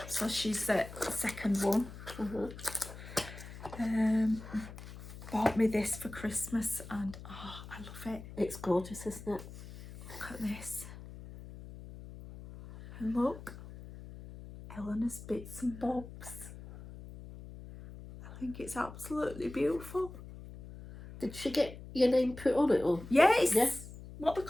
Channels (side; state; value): left; noise; hum, 14 dB below the sound